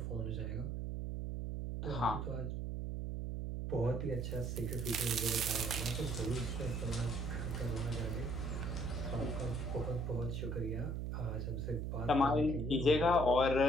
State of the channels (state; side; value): noise; right; hum, 2 dB below the sound